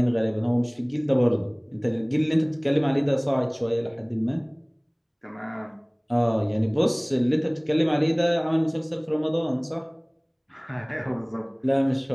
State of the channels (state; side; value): identical; both; correlation 1.00